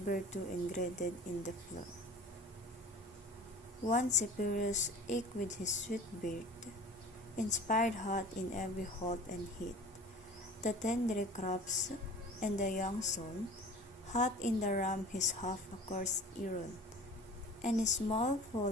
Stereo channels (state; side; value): normal; both; correlation 0.42